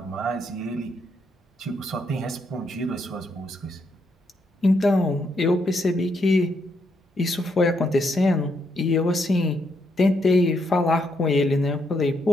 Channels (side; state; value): both; normal; correlation 0.77